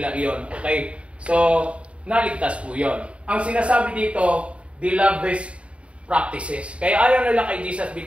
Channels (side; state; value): left; late; 0.061 ms